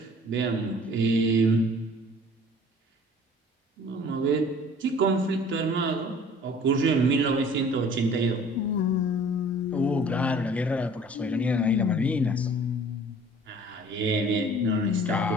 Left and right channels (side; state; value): both; normal; correlation 0.50